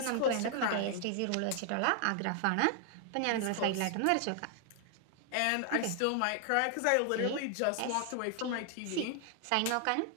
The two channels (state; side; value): different; both; correlation 0.00